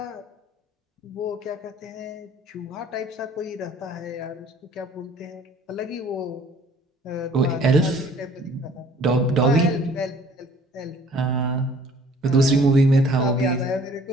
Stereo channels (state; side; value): normal; both; correlation 0.54